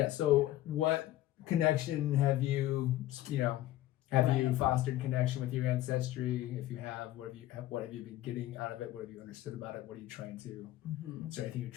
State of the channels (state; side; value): quieter; right; 14.7 dB